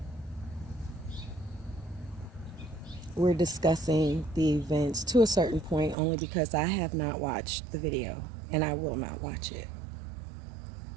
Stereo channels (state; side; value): drops out; left; at 6.0 s